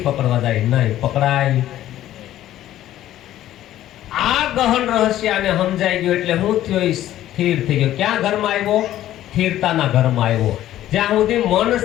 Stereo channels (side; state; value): right; quieter; 13.1 dB